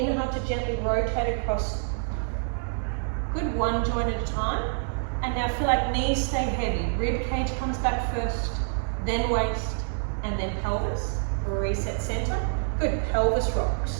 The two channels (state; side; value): silent; left; digital silence